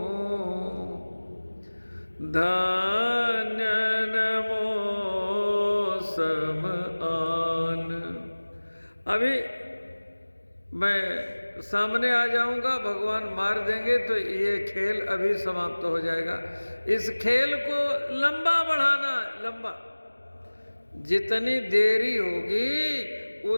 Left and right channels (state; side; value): inverted; both; correlation -1.00